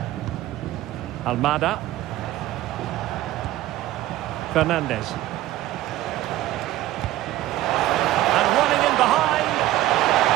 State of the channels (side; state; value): left; quieter; 15.2 dB